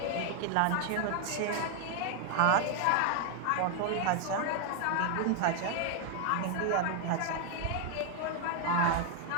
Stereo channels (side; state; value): both; different; correlation 0.00